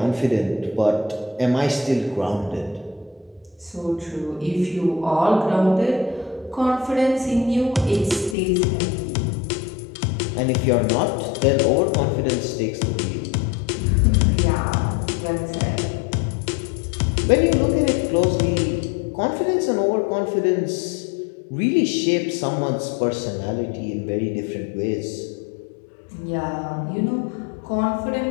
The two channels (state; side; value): drops out; right; at 8.3 s